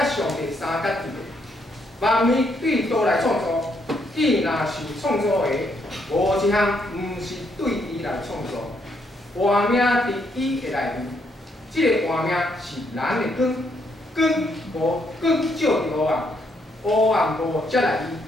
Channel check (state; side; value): normal; both; correlation 0.74